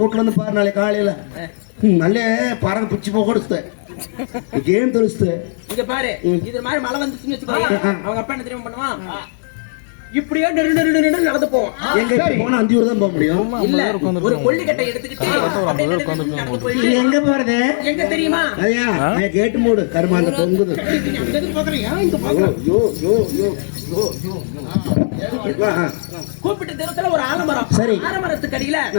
வந்து பாரு நாளைக்கு காலையில நல்ல பறவை பிச்சு போக கொடுத்து ஏன் தெரிச்சு இங்க பாரு இது மாதிரி மழை வந்துச்சுன்னு வச்சுக்கோங்க அவங்க அப்பா என்ன தெரியுமா பண்ணுவான் இப்படியே நடந்து போவோம் எங்க போனா 5 ஊர் தான் போக முடியும் ஒரு கொல்லிக்கட்டை எடுத்துக்கிட்டு எங்க போறது எங்க தெரியுமா ஐயா கேட்டு மூடு கருமாண்ட தொங்குது கூப்பிட்டு தூரத்துல ஒரு ஆலமரம் சரி ஆலமரத்துக்கு அடியில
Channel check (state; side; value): silent; right; digital silence